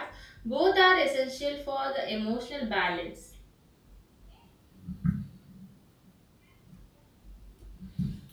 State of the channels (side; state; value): both; identical; correlation 1.00